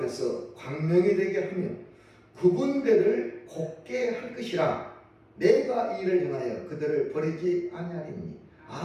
광명이 되게 하며 구분대를 곱게 할 것이라. 내가 이를 행하여 그들을 버리지 아니하리니. 이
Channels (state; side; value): identical; both; correlation 1.00